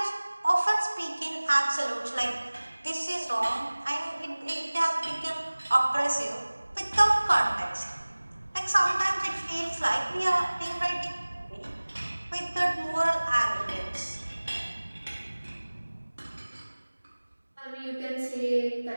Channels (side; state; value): both; inverted; correlation -1.00